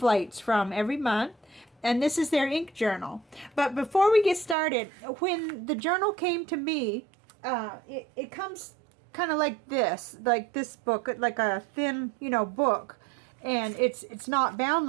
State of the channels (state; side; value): drops out; left; at 4.5 s